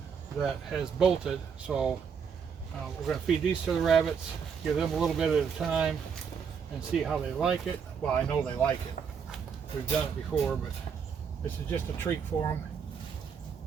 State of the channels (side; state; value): left; quieter; 6.7 dB